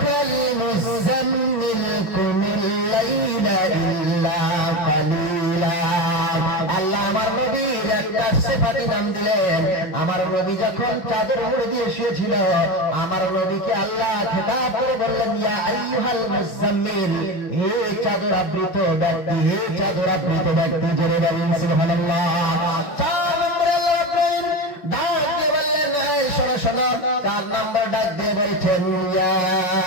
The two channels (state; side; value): late; right; 5.8 ms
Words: মুযাম্মিল কুমিল লাইলা ইল্লা কালিলা। আল্লাহ আমার নবীর একটা সিফাতি নাম দিলেন। আমার নবী যখন চাদর মুড়ি দিয়ে শুয়েছিল, আমার নবীকে আল্লাহ খেতাব করে বললেন, ইয়া আইয়ুহাল মুযাম্মিল, হে চাদর আবৃত ব্যক্তি, হে চাদর আবৃত ব্যক্তি। জোরে বলুন সুবহানাল্লাহ। 4 নম্বরে আল্লাহ রাব্বুল ডাক দিয়ে বললেন, এই শোনো শোনো। 4 নম্বর ডাক দিয়ে বলছেন, ইয়া